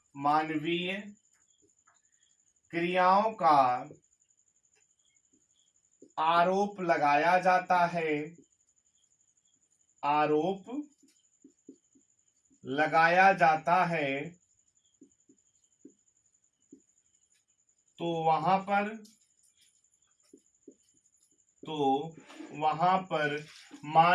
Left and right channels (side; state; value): both; identical; correlation 1.00